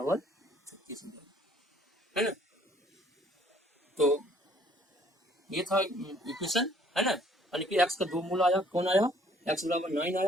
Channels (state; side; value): normal; both; correlation 0.60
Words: 36 हो जाएगा है ना। तो ये था इक्वेशन है ना, यानी कि x का दो मूल आया, कौन आया x बराबर 9